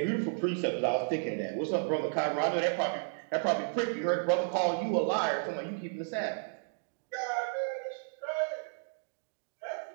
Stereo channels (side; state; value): left; silent; digital silence